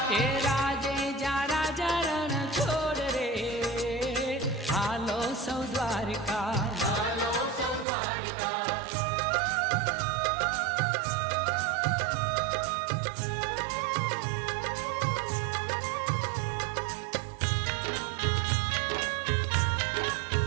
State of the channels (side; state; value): left; drops out; at 7.9 s